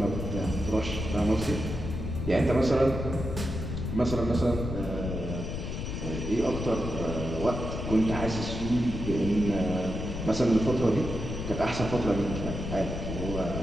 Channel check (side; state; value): left; noise; rumble, 5 dB below the sound